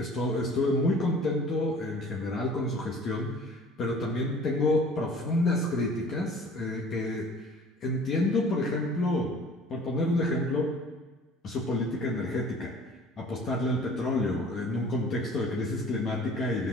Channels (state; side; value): normal; both; correlation 0.48